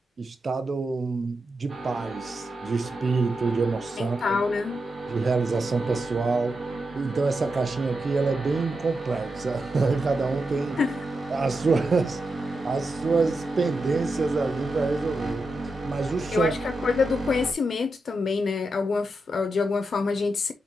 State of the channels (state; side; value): normal; both; correlation 0.87